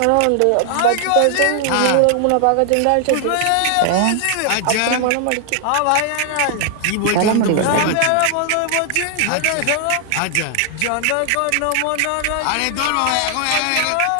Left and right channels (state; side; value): different; both; correlation 0.00